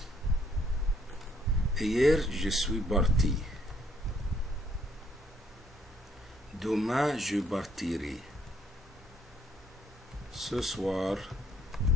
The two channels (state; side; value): normal; both; correlation 0.68